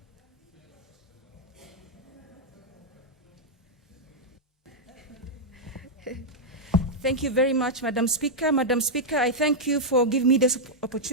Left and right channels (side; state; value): both; normal; correlation -0.05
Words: Thank you very much, Madam Speaker. Madam Speaker, I thank you for giving me this